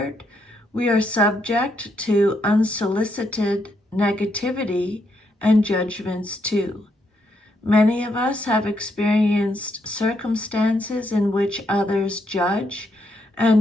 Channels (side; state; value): both; normal; correlation 0.77